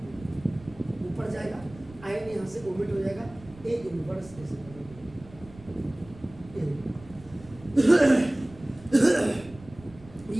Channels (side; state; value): right; noise; rumble, 20 dB below the sound